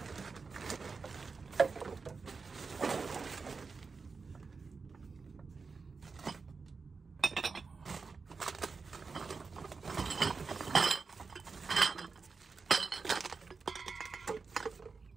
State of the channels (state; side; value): quieter; left; 4.7 dB